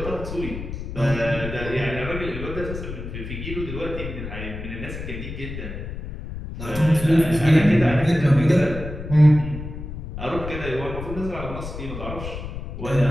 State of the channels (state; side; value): noise; left; rumble, 8 dB below the sound